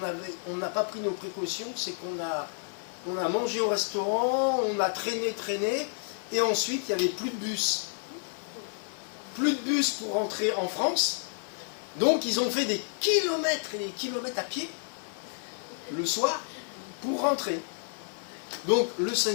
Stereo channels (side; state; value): right; silent; digital silence